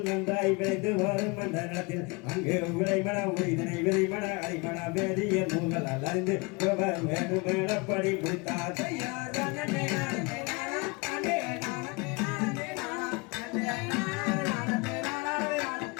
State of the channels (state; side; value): quieter; right; 28.0 dB